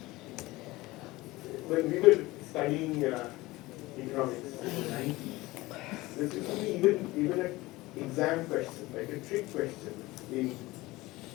when we were studying economics in the 90s, there used to be even an exam question, like a trick question in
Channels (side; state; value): right; quieter; 19.9 dB